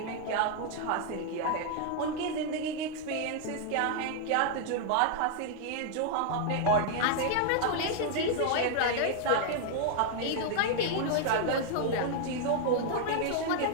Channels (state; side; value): different; both; correlation 0.00